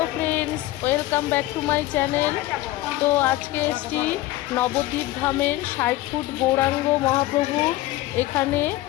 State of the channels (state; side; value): quieter; right; 16.8 dB